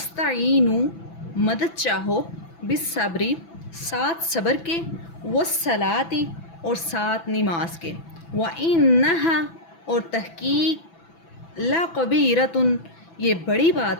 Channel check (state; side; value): late; right; 6.0 ms